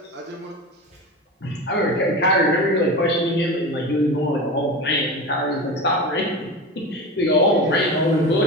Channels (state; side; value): normal; both; correlation 0.27